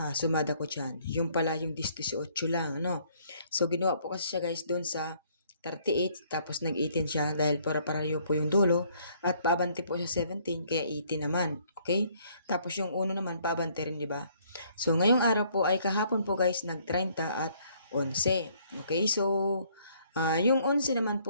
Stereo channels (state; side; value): inverted; both; correlation -0.64